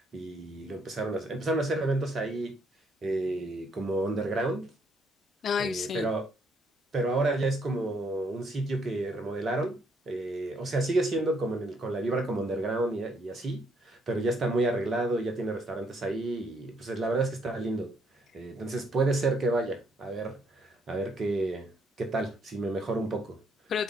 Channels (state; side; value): normal; both; correlation 0.70